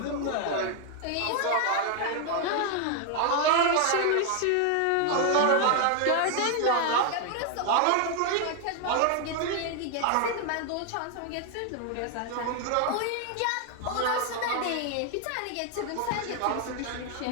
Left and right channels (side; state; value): both; different; correlation 0.00